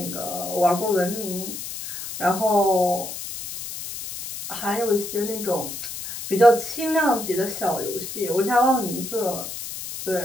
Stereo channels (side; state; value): left; noise; hiss, 8 dB below the sound